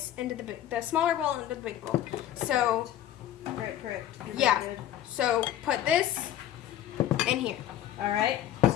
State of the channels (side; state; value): right; quieter; 11.9 dB